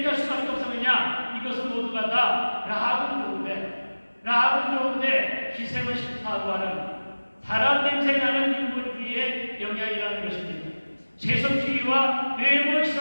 할 수밖에 없었느냐? 이것은 모두가 다 라합은 좋은데 기생은 싫다고 하는 사람 냄새 나는 인본주의의 영향이라는 것입니다. 세속주의와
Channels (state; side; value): inverted; both; correlation -1.00